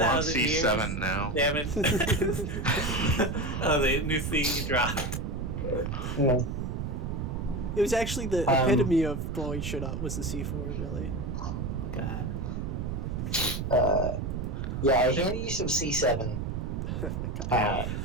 years. C7 now. They haven't. Oh, the new C dropped. Yeah. It was actually the Um, epitome of blowing shit up was the C4, really. God. Yeah, I handed you some C7. Oh my god.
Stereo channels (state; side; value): noise; right; rumble, 3 dB below the sound